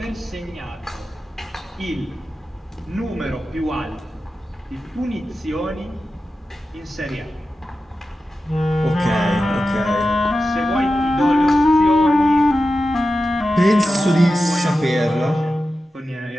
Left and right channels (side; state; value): both; normal; correlation 0.92